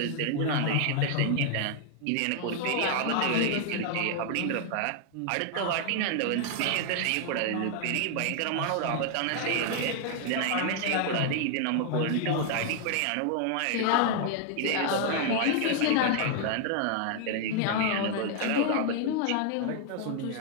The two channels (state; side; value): different; both; correlation 0.00